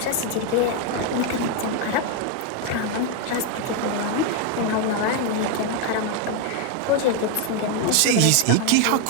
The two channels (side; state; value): both; different; correlation 0.01